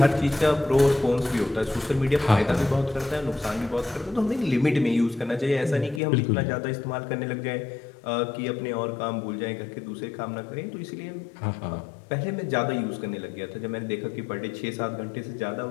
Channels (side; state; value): right; drops out; at 6.0 s